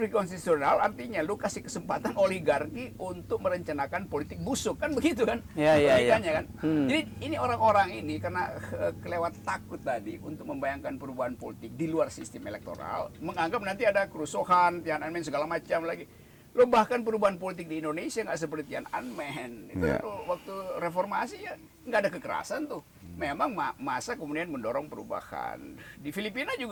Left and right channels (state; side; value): identical; both; correlation 1.00